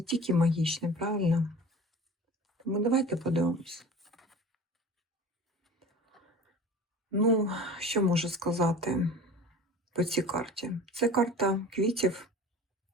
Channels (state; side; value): normal; both; correlation 0.39